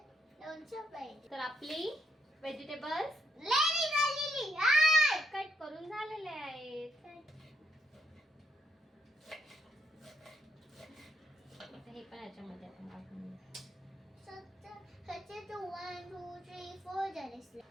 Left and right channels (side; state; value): both; normal; correlation 0.77